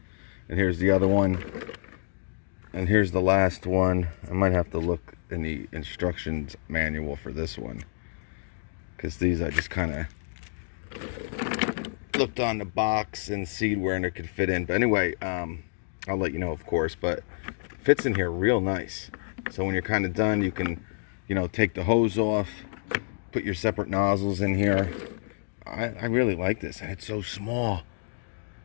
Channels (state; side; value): silent; right; digital silence